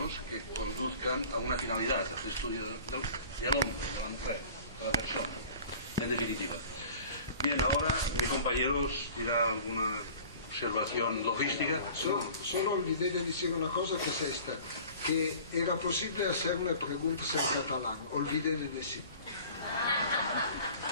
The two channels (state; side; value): inverted; both; correlation -0.44